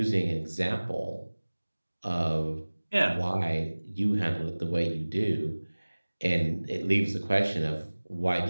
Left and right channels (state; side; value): inverted; both; correlation -1.00